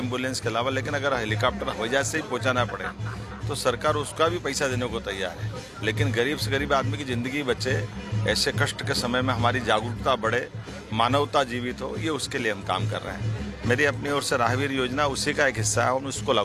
के अलावा, लेकिन अगर हेलीकॉप्टर हवाई जहाज से ही पहुंचाना पड़े तो सरकार उसका भी पैसा देने को तैयार है। लेकिन गरीब से गरीब आदमी की ज़िंदगी बचे, ऐसे कष्ट के समय में हमारी जागरूकता बढ़े, मानवता जीवित हो, ये उसके लिए हम काम कर रहे हैं। मेरी अपनी ओर से राहवीर योजना उसी का एक हिस्सा है, हम उसको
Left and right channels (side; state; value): both; identical; correlation 1.00